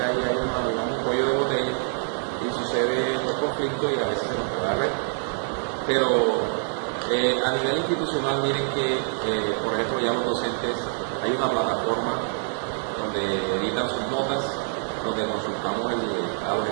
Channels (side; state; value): left; silent; digital silence